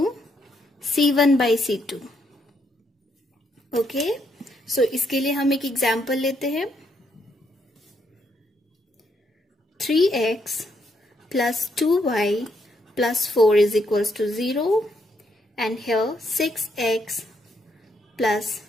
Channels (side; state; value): both; normal; correlation 0.75